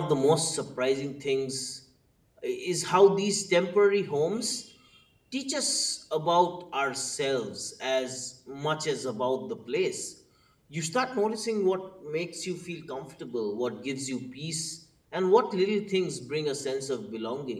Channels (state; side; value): identical; both; correlation 1.00